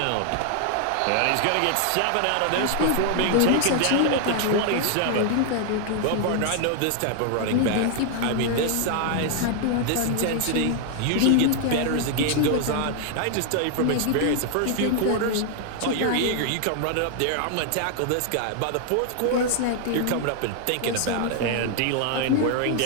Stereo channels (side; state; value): both; different; correlation 0.00